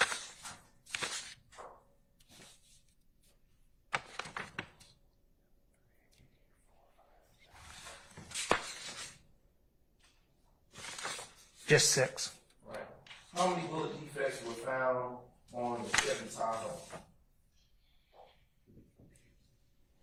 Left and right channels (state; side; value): identical; both; correlation 1.00